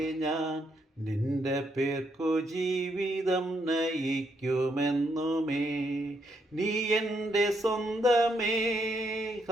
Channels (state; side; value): normal; both; correlation 0.76